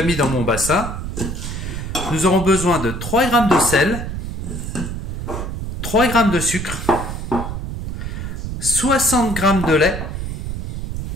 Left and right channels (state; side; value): noise; right; rumble, 5 dB below the sound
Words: mis dans mon bassin. Nous aurons besoin de 3 g de sel, 3 g de sucre, 60 g de lait,